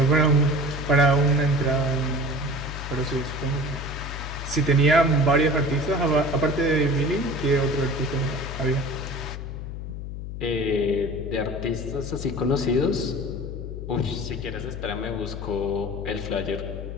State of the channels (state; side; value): noise; left; hum, 7 dB below the sound